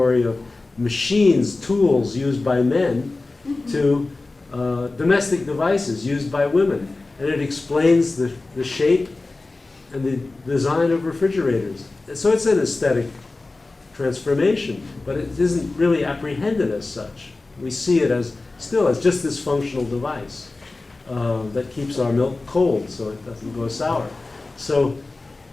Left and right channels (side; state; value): right; quieter; 3.3 dB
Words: of machines, tools used by men, to domestic devices used by women. And it explains the shape and the design of refrigerators. So it's an aesthetic transformation, but it isn't really apprehended as such. We see it still as just this functional device that keeps our milk cold so it doesn't go sour. So